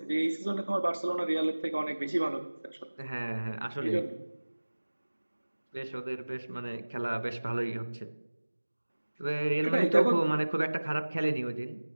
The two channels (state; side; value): inverted; both; correlation -1.00